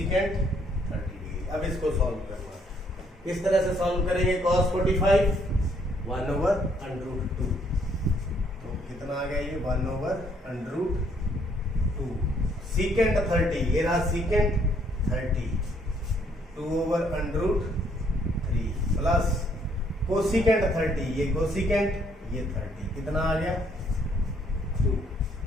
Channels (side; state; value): both; normal; correlation 0.67